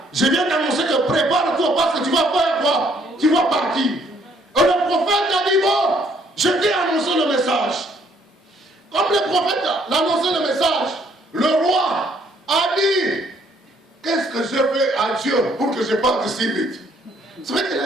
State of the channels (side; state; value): both; normal; correlation 0.66